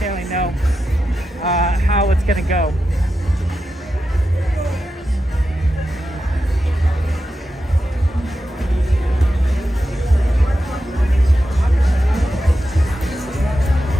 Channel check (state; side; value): normal; both; correlation 0.90